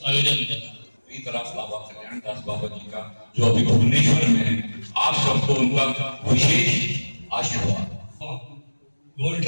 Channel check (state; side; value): inverted; both; correlation -1.00